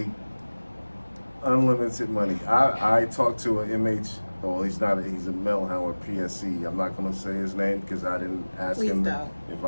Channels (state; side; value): inverted; both; correlation -1.00